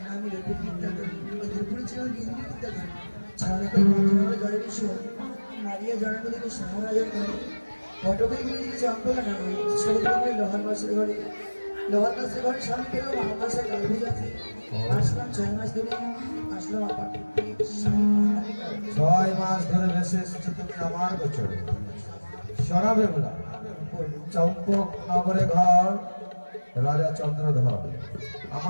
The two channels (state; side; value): inverted; both; correlation -1.00